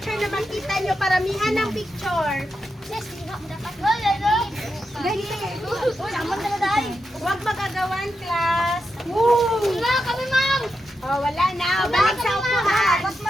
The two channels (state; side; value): normal; both; correlation 0.87